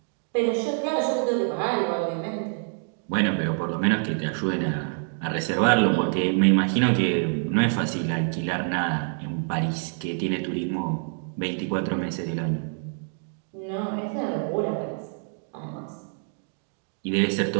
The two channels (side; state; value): left; silent; 56 dB below the other